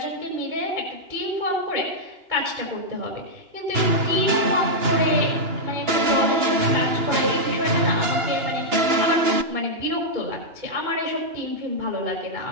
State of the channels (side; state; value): left; late; 2.9 ms